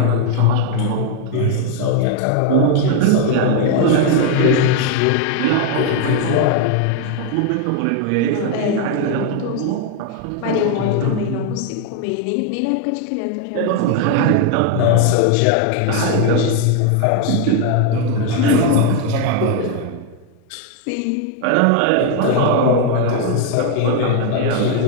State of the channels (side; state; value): both; different; correlation 0.00